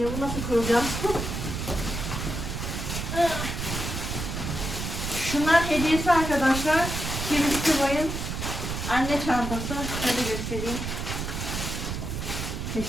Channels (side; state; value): right; noise; rumble, 4 dB below the sound